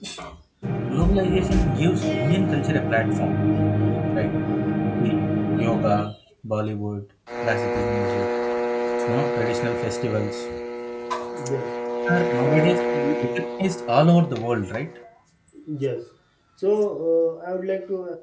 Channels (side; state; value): both; identical; correlation 1.00